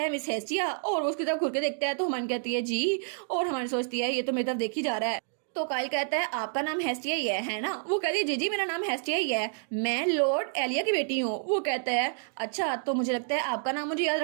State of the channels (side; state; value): left; silent; digital silence